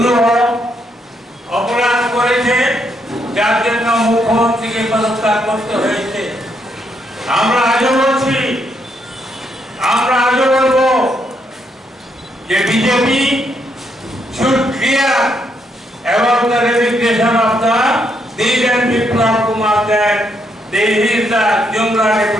অপরাধ করেছে যার জন্য মুখ্যমন্ত্রীকে পদত্যাগ করতে হয়েছে। আমরা আজও বলছি, আমরা আজও বলবো যে BJP should clear about the resignation of the Deegan Biplab Kumar that he is the Jumla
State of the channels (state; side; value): normal; both; correlation 0.76